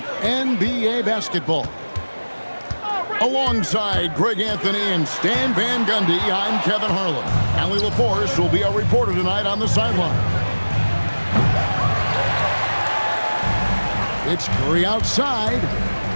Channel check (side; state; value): both; inverted; correlation -1.00